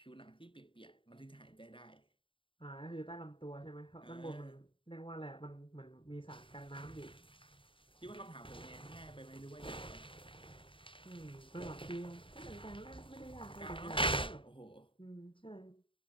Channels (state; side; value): late; right; 0.25 ms